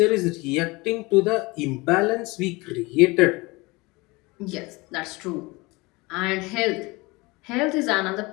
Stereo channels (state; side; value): quieter; right; 24.1 dB